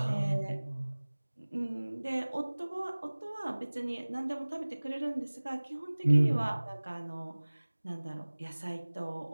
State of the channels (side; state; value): both; inverted; correlation -1.00